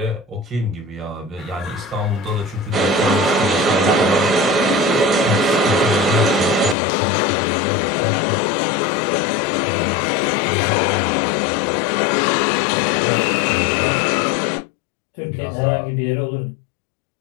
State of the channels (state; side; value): drops out; right; at 6.8 s